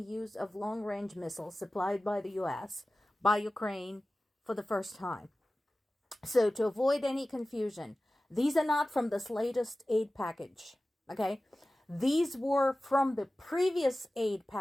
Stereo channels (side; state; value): both; normal; correlation 0.96